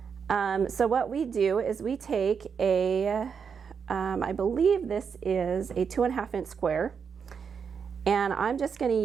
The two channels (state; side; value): quieter; left; 6.4 dB